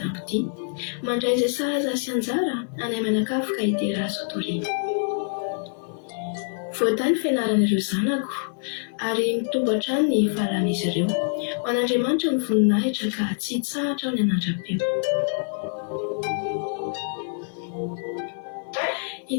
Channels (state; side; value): silent; right; digital silence